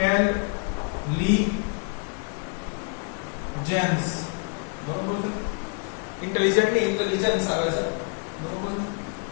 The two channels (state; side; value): quieter; right; 37.8 dB